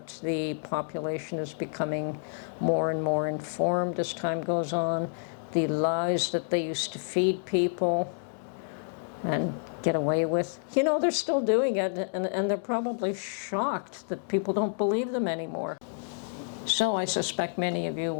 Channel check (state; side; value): silent; right; digital silence